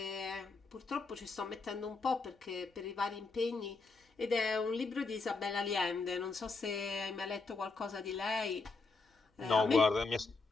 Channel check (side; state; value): right; quieter; 4.0 dB